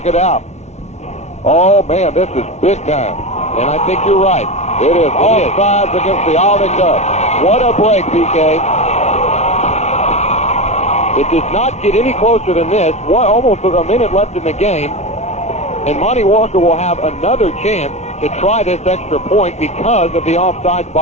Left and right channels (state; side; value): late; right; 0.32 ms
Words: it out. Oh, man, this is big time. And I think you're right. It is offsides against the Olney Cubs. What a break, PK. It does not get any closer than this. Almost a minute left in the game. And Monty Walker will have another chance to try this extra point because of the offsides